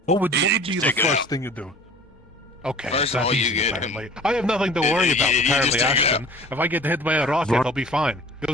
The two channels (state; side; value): normal; both; correlation 0.45